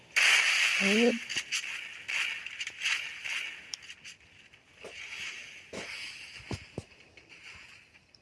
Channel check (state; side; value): identical; both; correlation 1.00